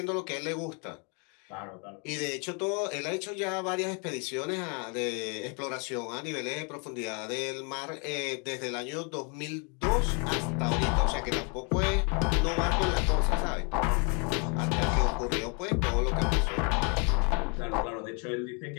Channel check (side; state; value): right; quieter; 35.6 dB